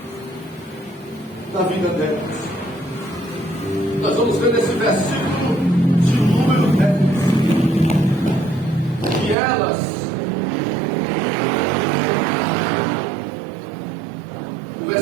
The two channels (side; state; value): left; drops out; at 9.3 s